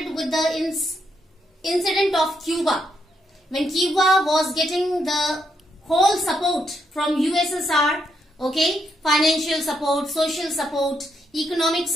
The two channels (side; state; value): both; normal; correlation 0.78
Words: with the incident of Cuba. When Cuba was getting the whole support from USSR, okay, financial support, social support, economic